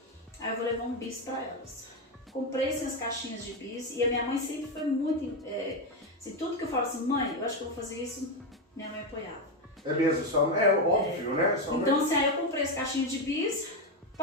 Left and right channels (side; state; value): both; normal; correlation 0.09